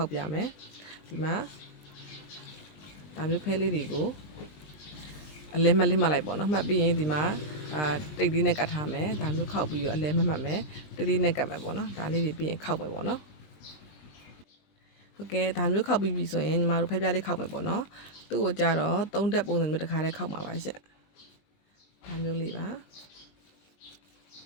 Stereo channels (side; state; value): right; late; 20 ms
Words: က်ပြမယ်ဒီမှာဒါမျိုးဖဲလေးတွေကိုအလဲမလစ်မှတ်လိုက်ပေါ့နော်မှတ်ပြီးရင်ဒီမှာတိတ်လေးနဲ့ကတ်ထားမယ်ဒါမျိုးခောက်ပြီးတော့အလဲမှတ်မယ်တိတ်လေးနဲ့ကတ်မယ်ပေါ့နော်ဒါလေးတွေပြီးရင်ခောက်မယ်ပေါ့နော်ဟုတ်ကဲ့ဒါမျိုးခောက်ပြီးပြီဆိုရင်ညီမတို့ဖဲပြားလေးခောက်မယ်ပေါ့နော်သူ့ကိုကြတော့3တက်ပုံစံမျိုးတစ်ခါလေးခောက်မှာပါရှင့်ဒါမျိုးလေးပါ